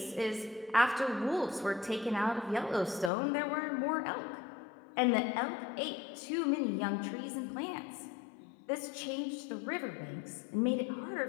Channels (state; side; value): drops out; right; at 3.1 s